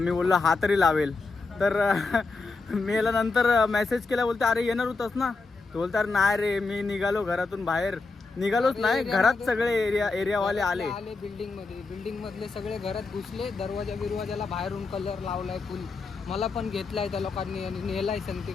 बोललो हा तरी लावेल. तर मी याला नंतर मेसेज केला, बोलते अरे येणार होतास ना. तो बोलतो अरे नाही रे, मी निघालो घरातून बाहेर. निघालोच नाही, घरात सगळे एरियावाले आले. बिल्डिंग मधले सगळे घरात घुसले. दरवाजाला बाहेरून कलर लावलाय फुल. मला पण घेतलाय त्या लोकांनी आणि नेलाय संगती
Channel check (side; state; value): right; quieter; 3.9 dB